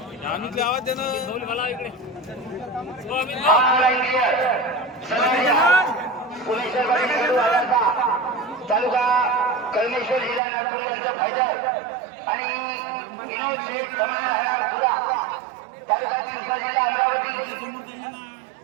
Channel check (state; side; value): drops out; left; at 10.4 s